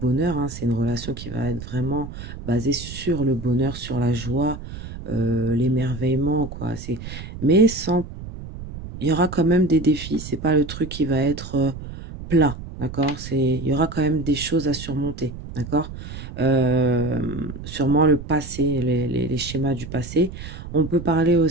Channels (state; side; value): noise; right; rumble, 11 dB below the sound